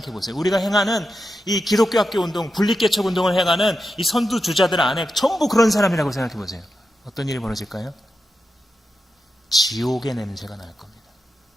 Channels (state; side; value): normal; both; correlation 0.89